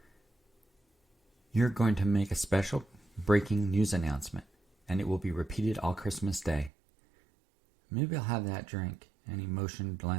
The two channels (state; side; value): drops out; left; at 6.7 s